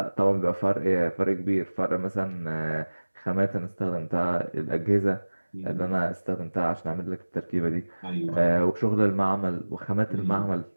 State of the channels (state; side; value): inverted; both; correlation -1.00